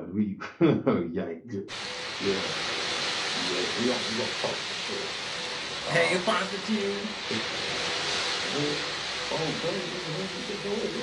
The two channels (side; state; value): both; identical; correlation 1.00